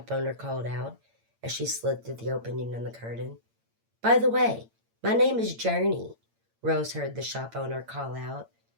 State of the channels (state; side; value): late; left; 8.8 ms